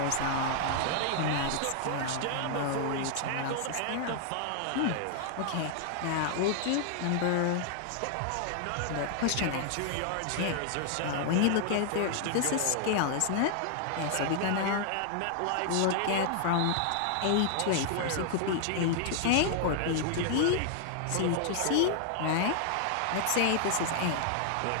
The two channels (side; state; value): both; different; correlation 0.00